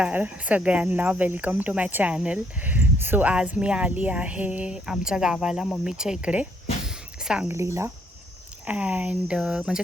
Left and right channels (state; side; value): normal; both; correlation 0.69